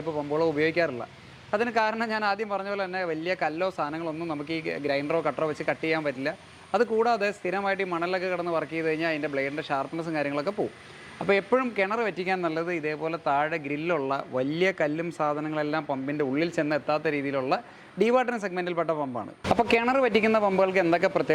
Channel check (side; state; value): both; identical; correlation 1.00